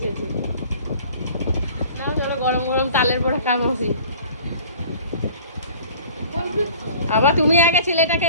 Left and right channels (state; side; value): inverted; both; correlation -0.48